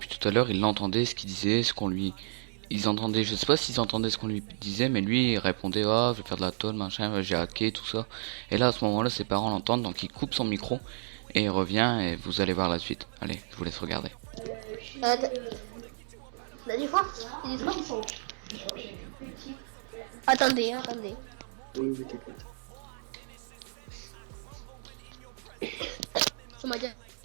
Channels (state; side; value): silent; left; 57 dB below the other